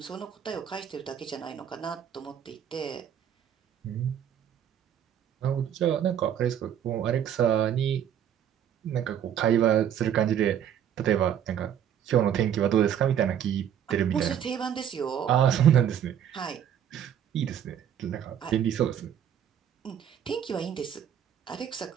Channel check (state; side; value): quieter; left; 9.4 dB